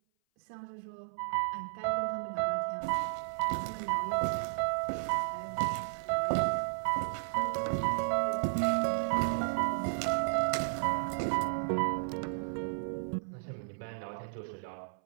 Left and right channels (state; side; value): silent; left; 56 dB below the other